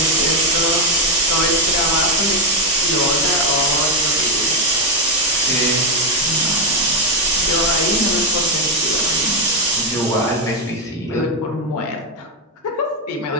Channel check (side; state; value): both; normal; correlation 0.04